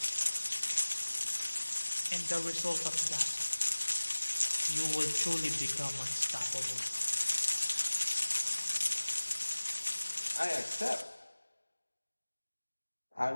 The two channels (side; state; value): both; inverted; correlation -1.00